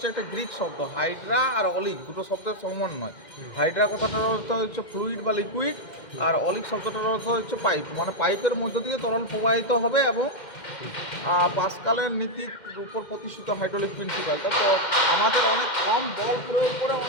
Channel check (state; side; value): late; right; 2.1 ms